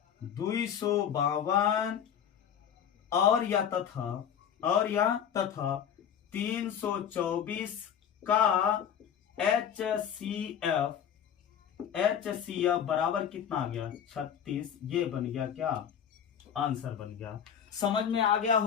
252 और या तथा 324 का HCF बराबर कितना आ गया 36, ये बन गया क्या, आंसर बन गया। समझ में आ गया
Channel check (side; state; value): right; quieter; 8.6 dB